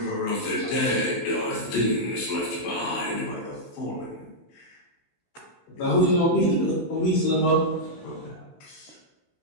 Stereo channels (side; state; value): right; late; 16 ms